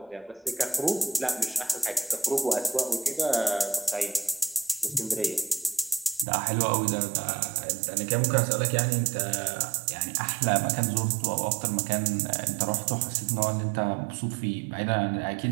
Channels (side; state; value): left; drops out; at 6.2 s